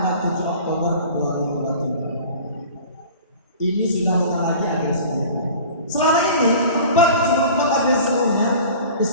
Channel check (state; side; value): inverted; both; correlation -0.42